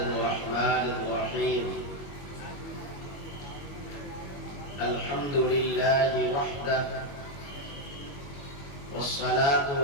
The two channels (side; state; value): right; late; 21 ms